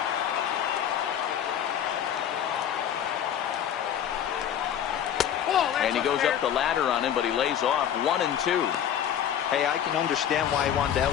And he goes up the ladder on him, but he lays off 1-2. Hey, I can understand why he wanted to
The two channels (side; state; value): right; quieter; 9.6 dB